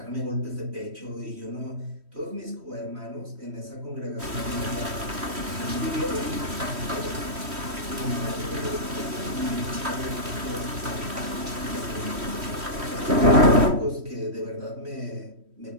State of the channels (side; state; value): left; late; 3.1 ms